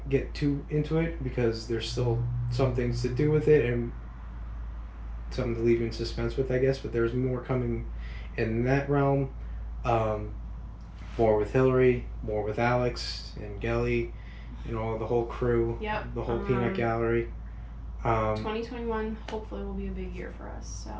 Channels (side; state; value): both; identical; correlation 1.00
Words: get too into it because there's still some things to do with it and something to leave in suspense with, I guess, but there's more coming in that realm. More with Hillary, more with Alex and Gelly, the whole crew. Yep. The whole peanut gallery. 2021 hopefully will be a big year for us. So